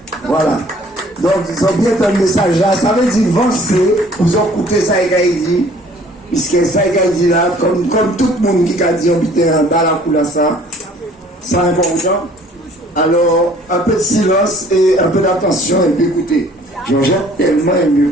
Voilà. Donc, ils ont bien un message là. Ça veut dire avancer. Vous ont écouté ça et dit. Puisque ça et dit là, comme tout le monde qui a dit habiter en bas la couleur ça, c'est important. Alors, un peu de silence et un peu d'attention et puis écoutez. Jean-Jacques tellement aimé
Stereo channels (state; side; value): normal; both; correlation 0.55